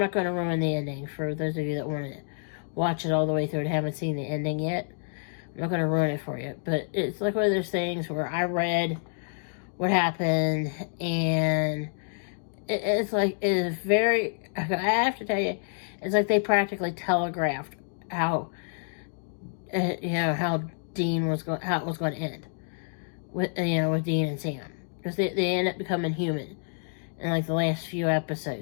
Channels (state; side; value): silent; right; digital silence